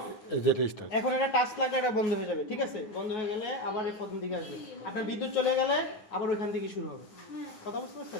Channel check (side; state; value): right; late; 9.4 ms